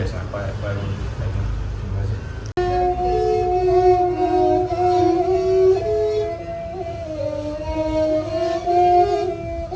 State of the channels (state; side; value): identical; both; correlation 1.00